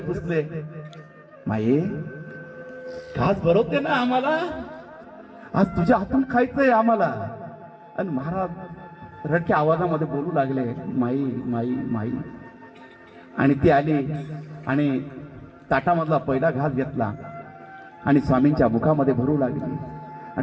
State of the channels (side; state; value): both; identical; correlation 1.00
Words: माई, खास भरवते ना आम्हाला, आज तुझ्या हातून खायचंय आम्हाला. आणि महाराज रडक्या आवाजामध्ये बोलू लागले, माई माई माई. आणि ती आली आणि ताटामधला पहिला घास घेतला आणि स्वामींच्या मुखामध्ये भरू लागली.